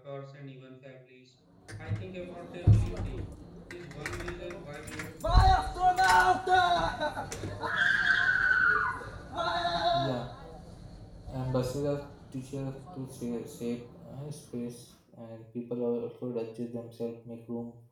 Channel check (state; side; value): identical; both; correlation 1.00